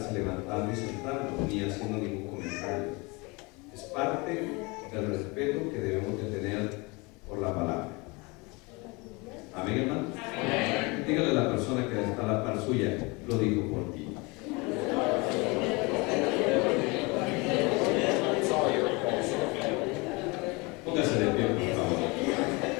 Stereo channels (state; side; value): quieter; right; 26.6 dB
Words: levantando y sentando, ni haciendo ningún comentario. Es parte del respeto que debemos de tener por la palabra. Amén, hermano. Amén. Dígale a la persona que está a la par suya, lo digo por ti. Póngase de pie, por favor.